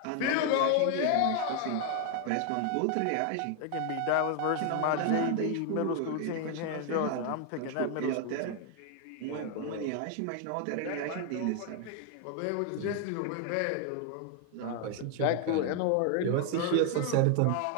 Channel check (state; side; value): different; both; correlation 0.00